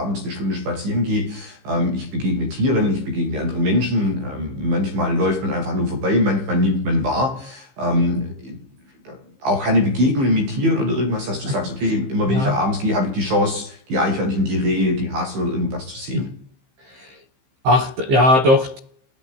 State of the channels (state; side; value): late; left; 15 ms